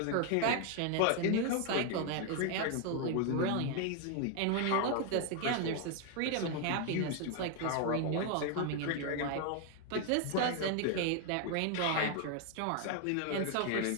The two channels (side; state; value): both; different; correlation 0.01